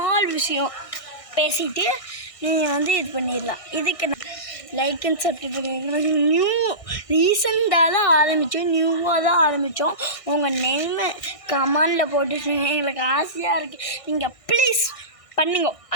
விஷயம் பேசிட்டு நீங்கள் வந்து இது பண்ணிடலாம். இதுக்கு லைக் அண்ட் சப்ஸ்கிரைப் ரீசெண்டாக தான் நியூவாக தான் ஆரம்பித்தோம். உங்கள் நேமை கமெண்டில் போட்டுட்டு எங்களுக்கு ஆசையாக இருக்குது. நீங்கள் ப்ளீஸ் பண்ணுங்க.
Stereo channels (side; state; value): right; late; 1.6 ms